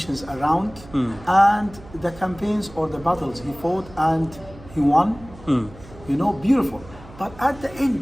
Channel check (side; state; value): right; noise; hum, 19 dB below the sound